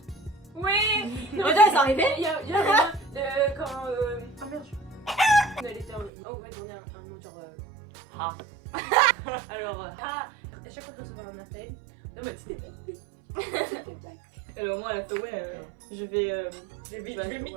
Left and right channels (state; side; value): drops out; left; at 6.1 s